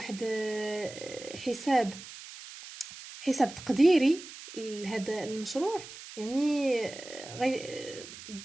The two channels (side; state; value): right; noise; hiss, 14 dB below the sound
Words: حساب تقديري لهذا المشروع. يعني